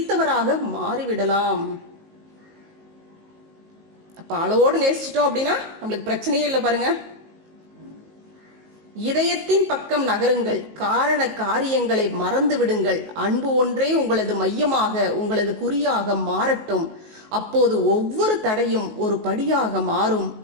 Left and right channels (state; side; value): late; left; 19 ms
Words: மாறிவிடலாம். அப்ப அளவோடு நேசிச்சிட்டோம் அப்படின்னா நம்மளுக்கு பிரச்சனையே இல்லை பாருங்க. இதயத்தின் பக்கம் நகருங்கள். காரண காரியங்களை மறந்து விடுங்கள். அன்பு ஒன்றே உங்களது மையமாக உங்களது குறியாக மாறட்டும். அப்போது ஒவ்வொரு தடையும் ஒரு படியாக மாறும்.